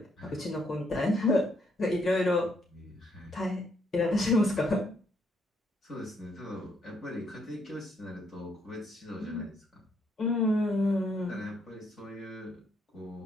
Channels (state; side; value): normal; both; correlation 0.73